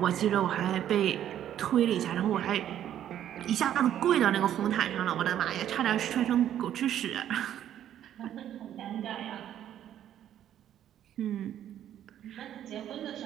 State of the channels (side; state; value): left; quieter; 10.9 dB